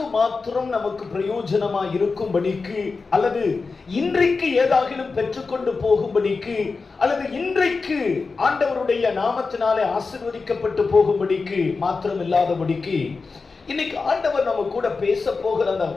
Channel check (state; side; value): quieter; right; 4.3 dB